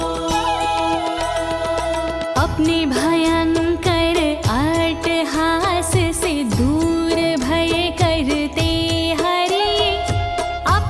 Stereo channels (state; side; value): identical; both; correlation 1.00